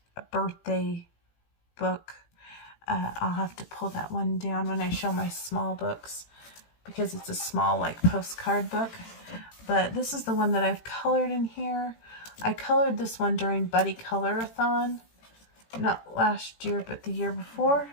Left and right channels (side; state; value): right; late; 18 ms